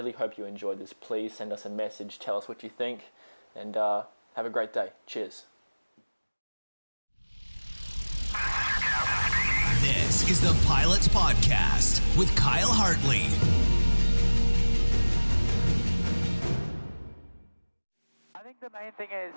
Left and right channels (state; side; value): inverted; both; correlation -1.00